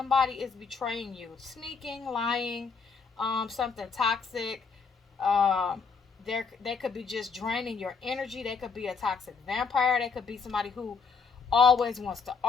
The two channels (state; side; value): quieter; right; 5.2 dB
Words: is betraying you, sneaking, lying, something toxic. Um, they could be just draining your energy. They could be a toxic vampire. They could be somebody who always wants to